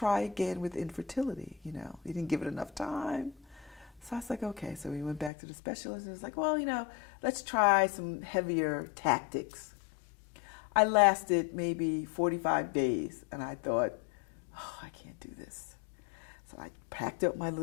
again with infertility. You know, he didn't give it enough time. So I was like, okay. So we went back to the specialist and he was like, well, you know, let's try some heavier tactics. I lasted maybe 45 days and I thought, oh, I can't do this. So I packed up my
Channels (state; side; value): drops out; right; at 5.3 s